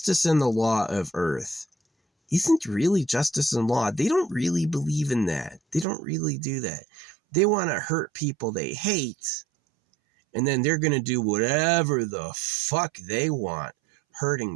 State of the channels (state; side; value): drops out; left; at 5.9 s